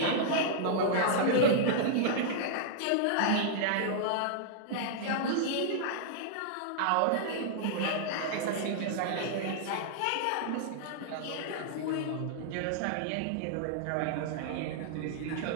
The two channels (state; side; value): different; both; correlation -0.01